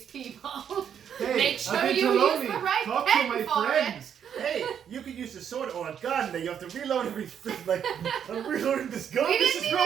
people. Hey, Make sure I've been you to use Lonely. the right Talk pen to my for friends. Hey, you could use a sword or a gun that you have to reload every. Like, I'm reloading this gun. We this didn't is even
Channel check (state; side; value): quieter; left; 8.5 dB